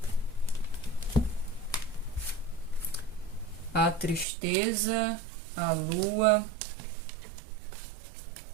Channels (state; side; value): drops out; left; at 4.2 s